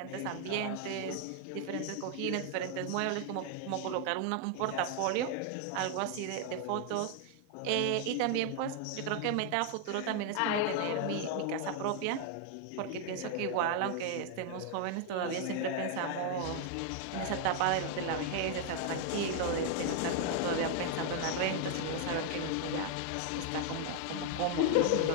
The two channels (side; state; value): both; different; correlation 0.00